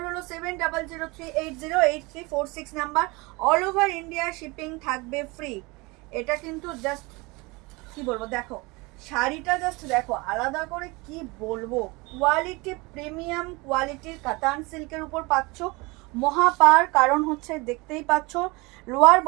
হলো 7003808346 number. All over India shipping থাকবে ফ্রি। এটা কিন্তু জাস্ট কি বলবো, দেখো শাড়িটা জাস্ট দেখো, আলাদা করে কি বলবো, কোয়ালিটি প্রিমিয়াম কোয়ালিটির কাতান সিল্কের উপর পাচ্ছ মহাপার। কারণ হচ্ছে দেখতেই পাচ্ছ লোয়ার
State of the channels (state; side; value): quieter; left; 25.3 dB